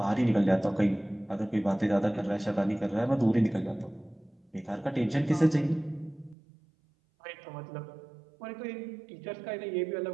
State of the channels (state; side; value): drops out; left; at 6.4 s